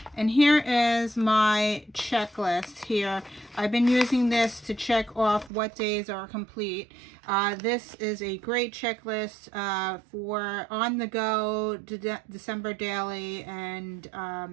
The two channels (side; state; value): left; drops out; at 5.5 s